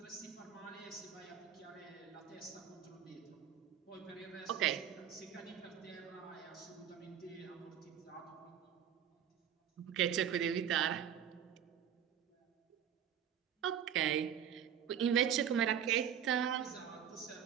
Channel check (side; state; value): left; quieter; 9.0 dB